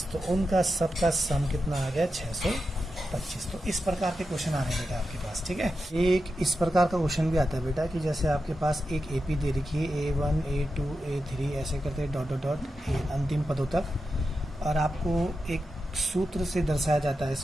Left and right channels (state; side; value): normal; both; correlation 0.89